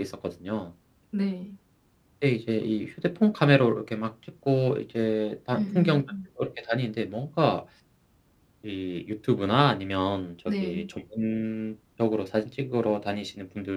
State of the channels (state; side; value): identical; both; correlation 1.00